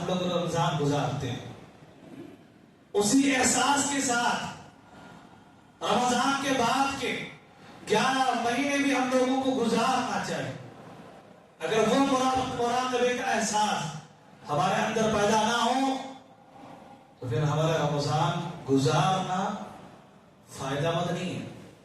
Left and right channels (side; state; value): both; identical; correlation 1.00